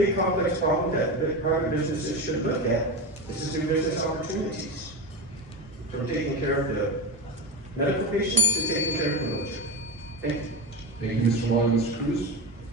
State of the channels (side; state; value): both; normal; correlation 0.21